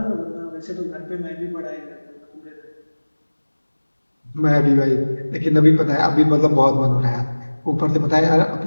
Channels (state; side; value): inverted; both; correlation -1.00